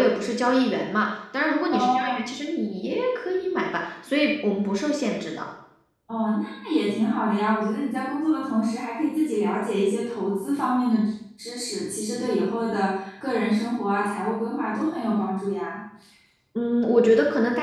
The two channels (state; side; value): identical; both; correlation 1.00